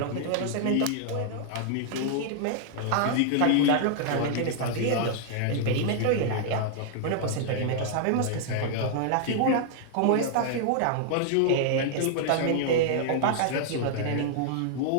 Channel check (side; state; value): both; different; correlation -0.01